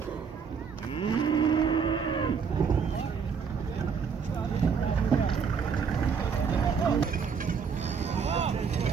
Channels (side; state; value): left; quieter; 6.2 dB